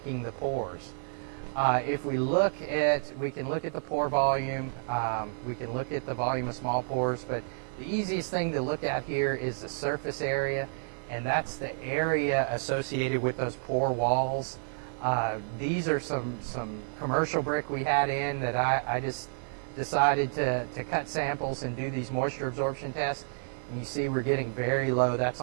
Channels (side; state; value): left; silent; 58 dB below the other